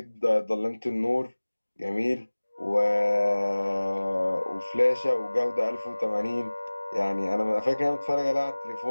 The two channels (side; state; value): both; inverted; correlation -1.00